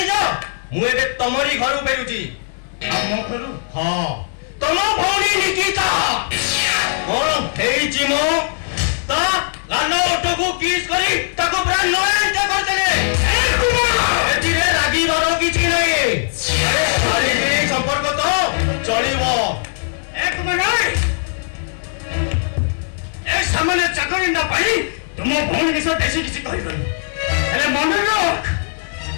ମୁଁ ଏବେ ତମରି ଘରୁ ଫେରୁଛି। ଆମ ଘରୁ? ହଁ, ତମ ଭଉଣୀ ନିକିତା କଣ ହେଇଛି ମୋ? ତା ଗାଲ ଓଠକୁ କିସ୍ କରି ତାକୁ ପୁରା ନୟନ୍ତ କରିଦେଲେ। ଏଥିରେ ରାଗିବାର କିଛି ନାହିଁ। ଆରେ ଶାରୀରିକ ସମ୍ପର୍କ ତ ଚଳିବ। ଏକ ମିନିଟ୍, ଏ ସାମାନ୍ୟ ଚାକରିଟା ପାଇଁ ତୁମ ଭଉଣୀ ବିଷୟ ବେଶୀ କିଛି କହିବନି। ହେଲେ ମନେ ରଖ,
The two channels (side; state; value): right; silent; digital silence